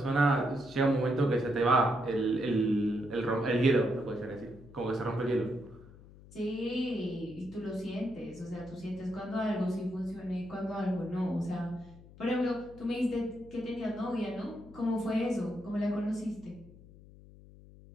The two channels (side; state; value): left; noise; hum, 20 dB below the sound